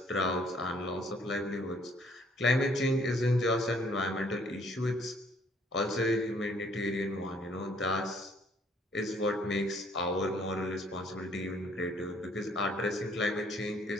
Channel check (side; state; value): both; normal; correlation 0.63